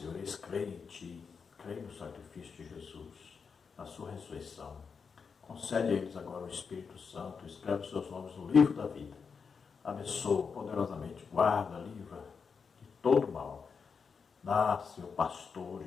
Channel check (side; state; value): right; quieter; 5.7 dB